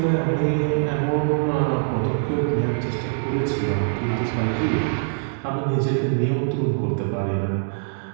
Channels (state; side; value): silent; left; digital silence